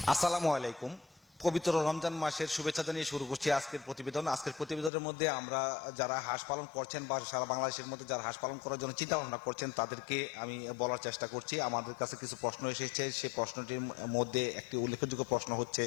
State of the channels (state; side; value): drops out; right; at 4.9 s